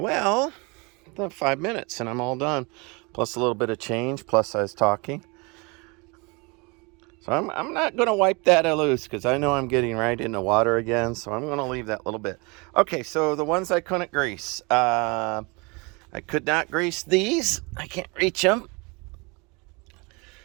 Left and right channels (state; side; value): quieter; left; 28.7 dB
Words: about 5 minutes and I'm all done. Plus a little bit of change, plus I was talking. So I'm not going to wipe that loose because I know I'm getting right into water again. So I'm going to leave that little bit. Okay, so the ones I couldn't grease. I could not grease these. I can't reach them.